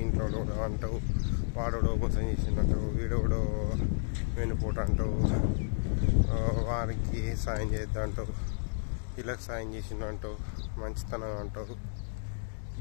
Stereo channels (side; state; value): right; silent; digital silence